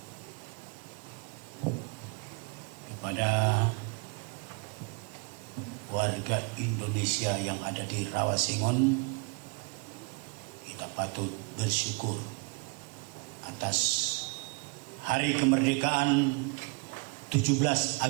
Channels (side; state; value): left; quieter; 32.6 dB